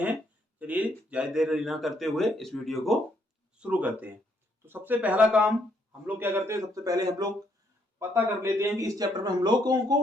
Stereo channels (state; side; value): normal; both; correlation 0.71